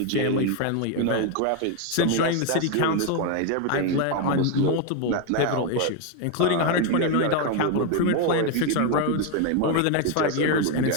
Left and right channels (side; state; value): both; different; correlation 0.01